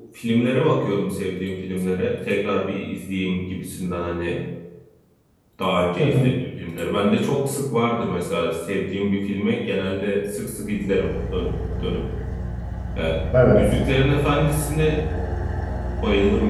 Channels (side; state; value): both; identical; correlation 1.00